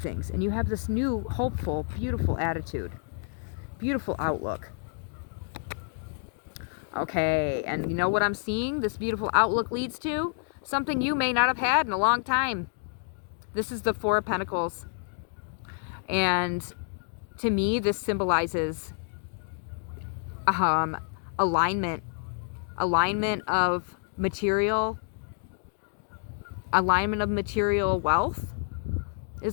and you have this new, hopeful, beautiful attitude, beautiful outlook. Okay, and you know what I'm seeing this beautiful outlook leads to? Something you may not have had in a long time. This is the Four of Pentacles. And to me, this symbolizes alignment. Alignment of material. Alignment of material wealth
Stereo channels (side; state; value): right; silent; 59 dB below the other